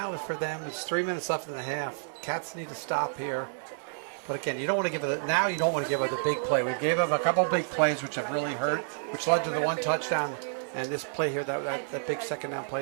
for them, it's 3 minutes left in the half. Cats need to stop here. But again, you don't want to give it. Now you don't want to give up the big play. We've gave up a couple big plays which have really hurt, which led to the 1 touchdown. And this play here, that big 2nd down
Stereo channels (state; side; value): silent; left; digital silence